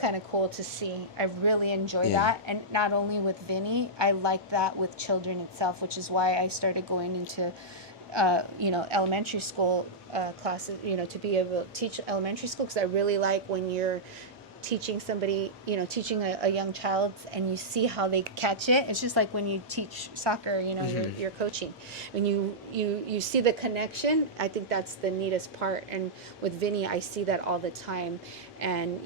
of cool to see. I really enjoy that. And not only with Vinny, I like that with children itself, which is why I started going into, elementary school classes, to be able to teach elementary school, because I really like when you're teaching somebody, teaching a young child, and you see how they catch it. It's just like when you teach soccer, you're coaching. When you see the connection, I think that's the neatest part. And with Vinny, I see that all the time. And,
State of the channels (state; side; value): normal; both; correlation -0.12